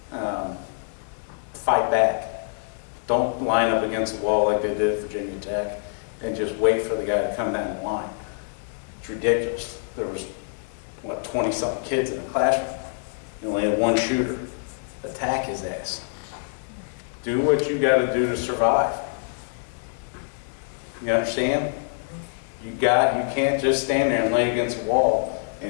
Fight back. Don't line up against the wall like they did at Virginia Tech and just wait for the guy to come down the line. It's ridiculous. There was, what, 20-something kids in the classroom. You only had one shooter. Attack his ass. Do what you got to do to survive. You understand? You can't just stand there and lay against the wall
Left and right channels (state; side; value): silent; right; digital silence